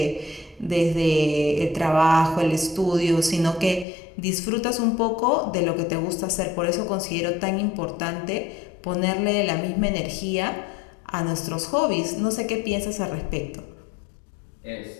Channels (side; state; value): right; drops out; at 3.9 s